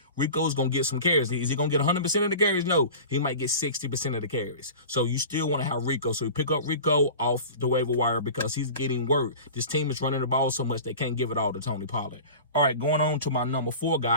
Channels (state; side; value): inverted; both; correlation -0.37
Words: Rico's going to get some carries. Is he going to get 100% of the carries? No. He might get 60% of the carries. So you still want to have Rico. So you pick up Rico off the waiver wire because he's getting work. This team is running the ball so much they can't give it all to Tony Pollard. All right, going on to my number 4